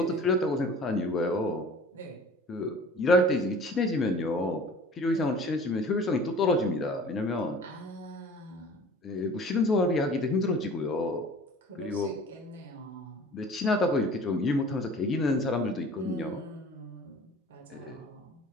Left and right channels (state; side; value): normal; both; correlation 0.46